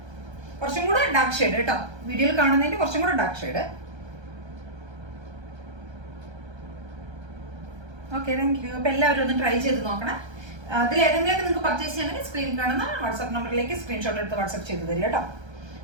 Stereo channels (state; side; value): late; left; 1.3 ms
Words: കുറച്ചും കൂടെ ഡാർക്ക് ഷെയ്ഡ് കേട്ടോ. വീഡിയോയിൽ കാണുന്നതിന്റെ കുറച്ചും കൂടെ dark shade. Okay, thank you. അപ്പൊ എല്ലാവരും ഒന്ന് ട്രൈ ചെയ്ത് നോക്കണം. അതിൽ ഏതെങ്കിലുമൊക്കെ നിങ്ങൾക്ക് പർച്ചേസ് ചെയ്യണമെങ്കിൽ സ്ക്രീനിൽ കാണുന്ന വാട്സാപ്പ് നമ്പറിലേക്ക് സ്ക്രീൻഷോട്ട് എടുത്ത് വാട്സാപ്പ് ചെയ്ത് തരിക കേട്ടോ.